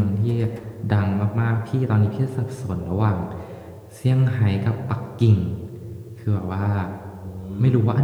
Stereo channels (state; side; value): identical; both; correlation 1.00